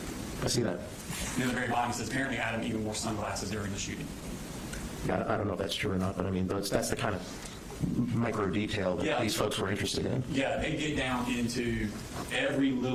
I see that. And at the very bottom, he says, apparently Adam even wore sunglasses during the shooting. Yeah, I don't know if that's true or not, but I mean, that's the kind of micro detail that these folks were interested in. Yeah, they get down into every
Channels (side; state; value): both; identical; correlation 1.00